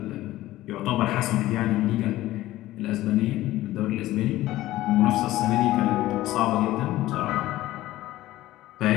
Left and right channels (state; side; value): quieter; right; 15.9 dB